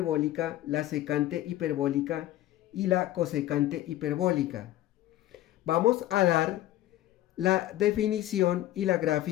la secante hiperbólica y la cosecante hiperbólica. Vamos a dar la definición y la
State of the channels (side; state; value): right; quieter; 14.6 dB